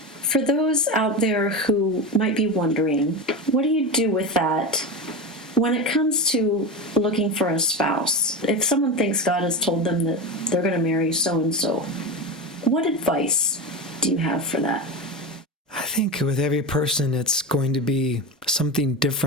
for those out there who might be wondering, what do you do with that when it comes to looking for a spouse? If someone thinks God has told them that they're going to marry so-and-so, what advice do you have for that? I think with every person, it's going to be something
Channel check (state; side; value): normal; both; correlation 0.21